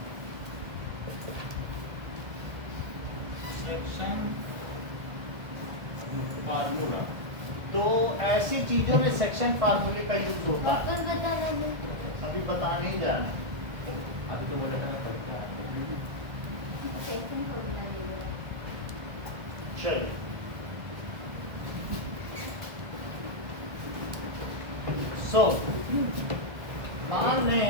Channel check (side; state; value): left; late; 1.6 ms